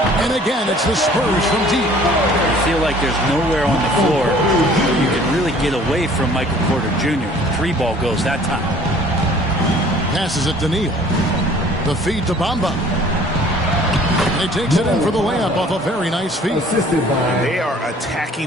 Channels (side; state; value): both; normal; correlation 0.53